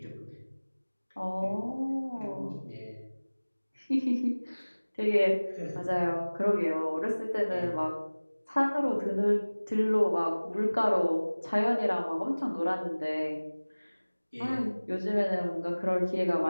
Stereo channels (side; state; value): both; inverted; correlation -1.00